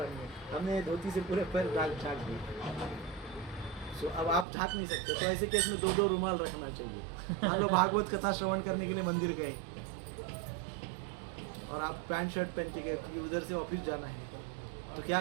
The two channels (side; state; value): left; drops out; at 4.5 s